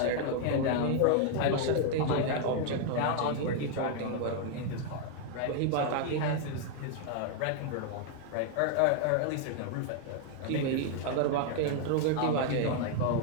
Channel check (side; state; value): both; different; correlation 0.00